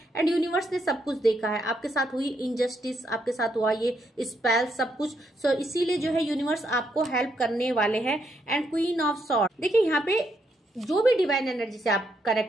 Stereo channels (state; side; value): normal; both; correlation 0.77